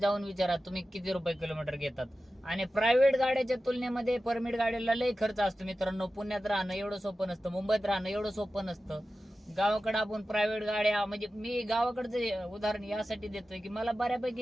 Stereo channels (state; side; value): normal; both; correlation 0.94